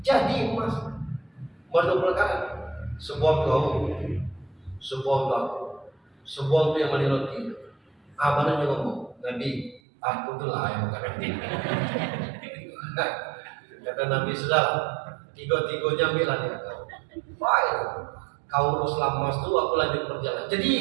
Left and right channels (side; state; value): left; drops out; at 9.8 s